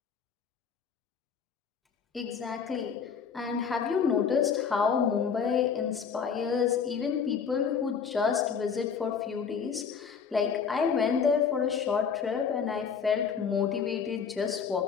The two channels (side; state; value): right; quieter; 6.5 dB